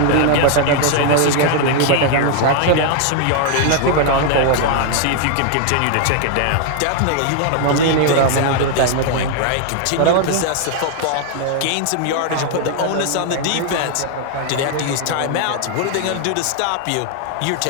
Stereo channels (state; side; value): different; both; correlation 0.00